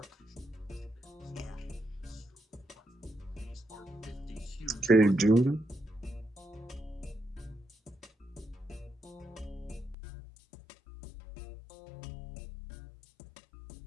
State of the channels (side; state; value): right; drops out; at 10.0 s